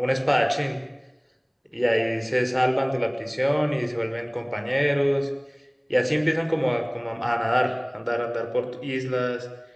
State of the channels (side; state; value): both; identical; correlation 1.00